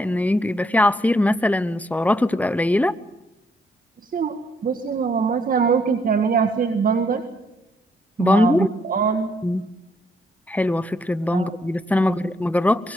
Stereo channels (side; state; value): both; normal; correlation 0.72